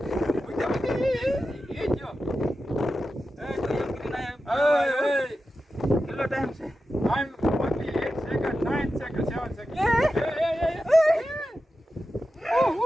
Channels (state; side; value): normal; both; correlation 0.92